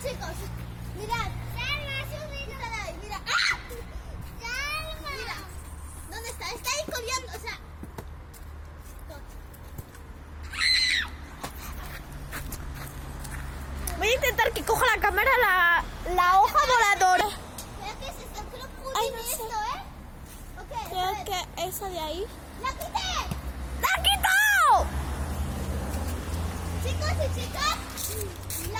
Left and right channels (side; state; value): both; identical; correlation 1.00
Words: chicos. Mirad. Salma, subid. Mira. ¡Ah! Salma. Mira. ¿Dónde está? Está ahí corriendo, o sea. Voy a intentar que coja la cámara la hoja voladora. ¿Pero qué es esto? Creo que Ay, tiene no sé. esto, ¿eh? Ok, a Creo ver. que esa de ahí. ¡La quité! ¡La ha quitado! Chicos y chicas,